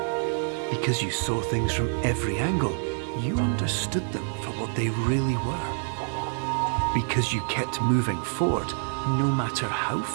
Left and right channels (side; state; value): left; silent; 60 dB below the other